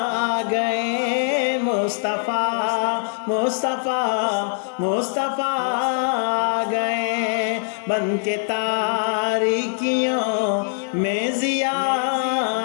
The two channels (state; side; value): silent; right; 58 dB below the other